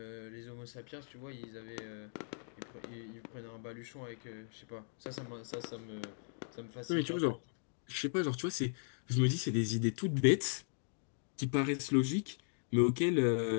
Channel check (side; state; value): right; silent; digital silence